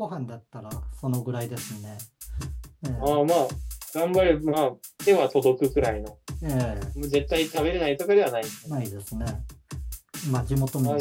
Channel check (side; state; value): both; identical; correlation 1.00